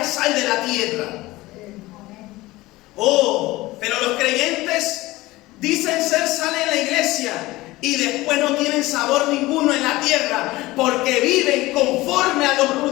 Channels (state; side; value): quieter; right; 19.2 dB